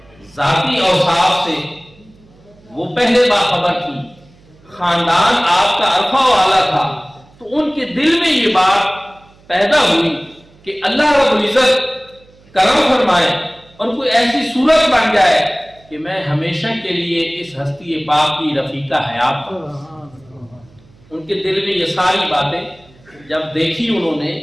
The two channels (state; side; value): noise; right; hum, 28 dB below the sound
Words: ذاتی اوصاف سے وہ پہلے باخبر تھی، خاندان آپ کا عرفہ والا تھا، تو ان کے دل میں یہ بات پیدا ہوئی کہ اللہ رب العزت کرم فرمائے اور کوئی ایسی صورت بن جائے کہ میں ہمیشہ کے لیے اس ہستی پاک کی رفیقہ حیات ہوں۔ ان کے دل میں یہ ساری باتیں جب دیکھی، انہوں نے